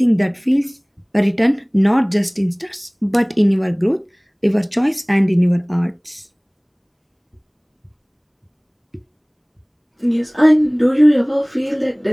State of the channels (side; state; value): both; identical; correlation 1.00